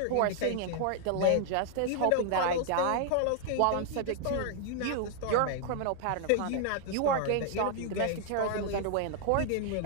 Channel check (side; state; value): both; different; correlation 0.00